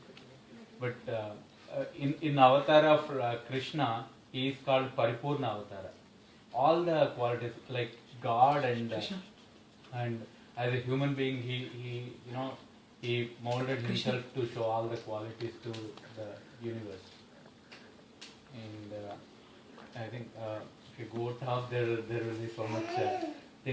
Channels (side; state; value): both; identical; correlation 1.00